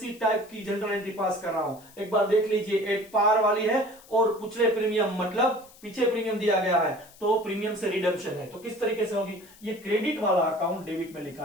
टाइप की जनरल एंट्री पास कर रहा हूं। एक बार देख लीजिए, एट पार वाली है और पिछले प्रीमियम मतलब पीछे प्रीमियम दिया गया है, तो प्रीमियम से रिडम्पशन है, तो किस तरीके से होगी, ये क्रेडिट वाला अकाउंट डेबिट में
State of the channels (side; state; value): left; noise; hiss, 24 dB below the sound